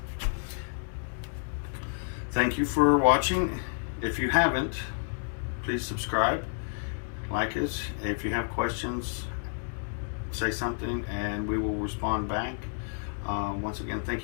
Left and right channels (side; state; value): right; silent; digital silence